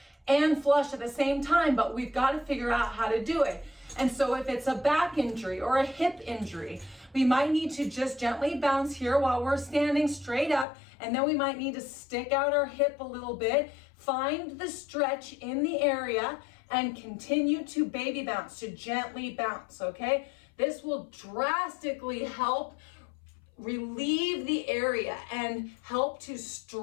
and flush at the same time, but we've got to figure out how to do it. And so if it's a back injury or a hip injury, we might need to just gently bounce here while we're standing straight up, and then we might need to stick out our hip a little bit, find the stretch in the area, and continue to baby bounce, to gently bounce, okay? This will drastically help relieve the area and help to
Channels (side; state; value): right; drops out; at 10.7 s